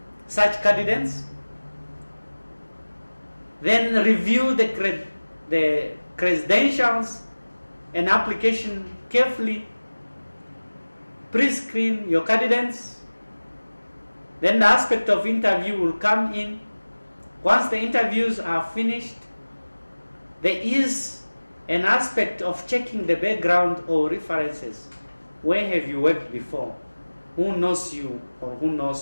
such candidates, then review the credentials and application carefully, pre-screen your candidates. Then the aspect of interview will come in. Once the interviews are finished, there is an aspect of checking the background or references. Where have you worked before? Who knows you or who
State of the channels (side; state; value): both; inverted; correlation -1.00